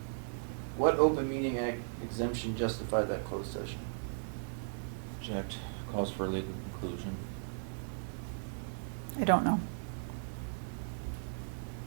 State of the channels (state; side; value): silent; left; digital silence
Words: What open meeting act exemption justified that closed session? Object. Calls for a legal conclusion. I don't know.